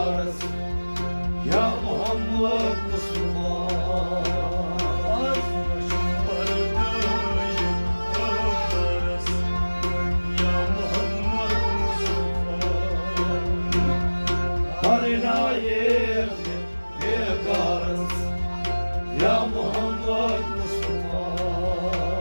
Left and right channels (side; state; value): both; inverted; correlation -1.00